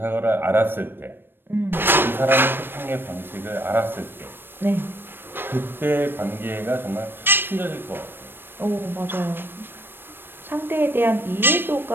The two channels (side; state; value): left; late; 0.098 ms